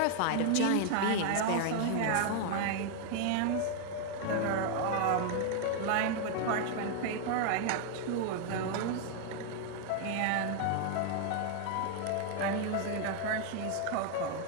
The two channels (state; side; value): different; both; correlation 0.00